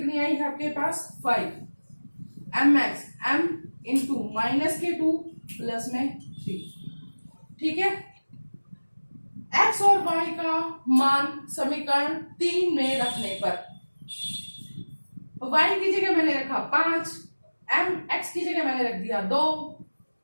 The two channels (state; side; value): inverted; both; correlation -1.00